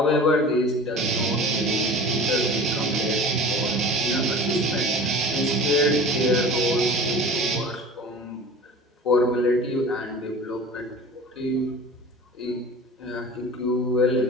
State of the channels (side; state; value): both; normal; correlation 0.39